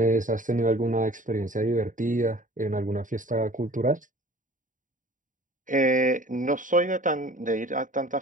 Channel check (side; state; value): left; late; 0.38 ms